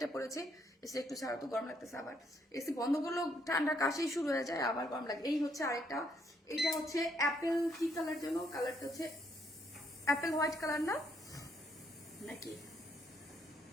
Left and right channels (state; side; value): normal; both; correlation 0.72